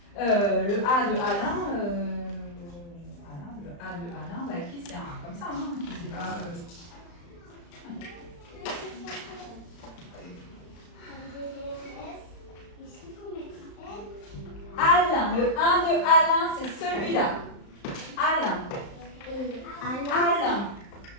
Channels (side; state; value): right; late; 35 ms